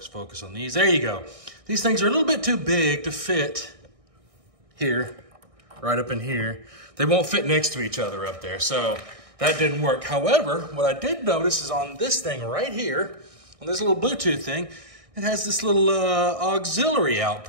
on these. There you go. These things are a little bit too big to fit here, right up in here. They won't fit next to each other up there, so that didn't work. However, what I did notice is on this thing right here, on this little Bluetooth thing, it has this little auxiliary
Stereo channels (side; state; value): left; late; 1.6 ms